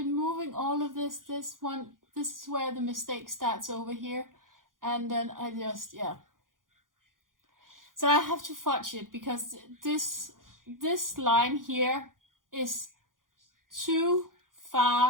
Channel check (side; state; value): left; late; 0.90 ms